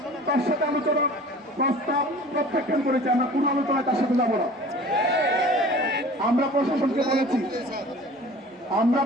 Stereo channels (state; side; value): normal; both; correlation 0.44